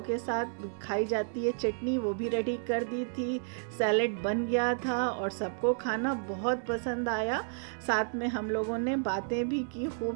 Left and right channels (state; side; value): silent; left; digital silence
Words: के साथ खाई जाती है चटनी, वो भी रेडी कर दी थी। सैलेड बन गया था और सबको खाना बहुत पसंद आया। साथ में हम लोगों ने बातें भी की खूब